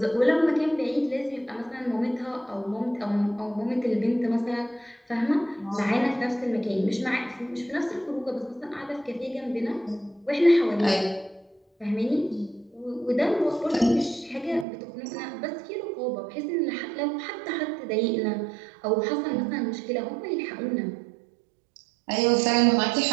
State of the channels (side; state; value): left; drops out; at 14.7 s